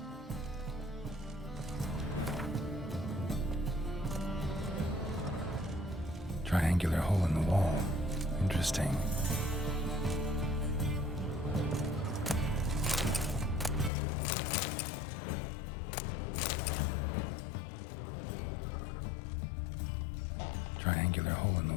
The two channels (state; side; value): drops out; right; at 13.9 s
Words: Triangular hole in the wall. Interesting. Triangular hole in the